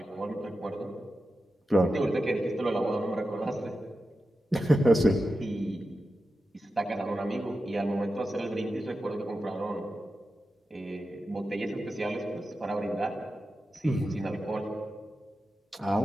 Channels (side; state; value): both; normal; correlation 0.91